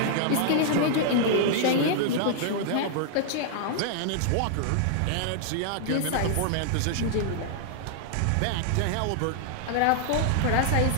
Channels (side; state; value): both; different; correlation -0.01